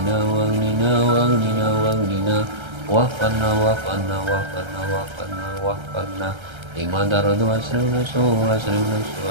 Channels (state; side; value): late; left; 1.3 ms